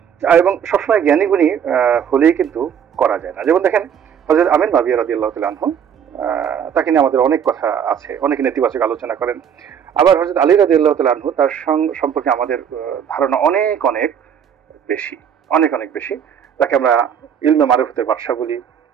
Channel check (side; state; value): left; quieter; 8.2 dB